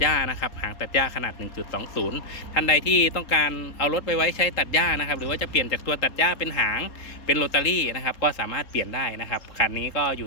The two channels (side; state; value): right; late; 3.8 ms